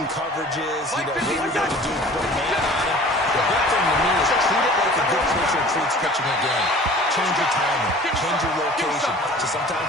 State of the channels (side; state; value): both; normal; correlation 0.46